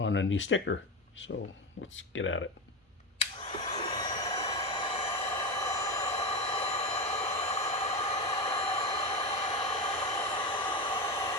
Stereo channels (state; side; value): normal; both; correlation 0.18